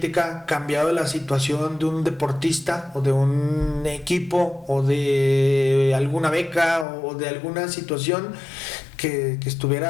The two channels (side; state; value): right; drops out; at 6.9 s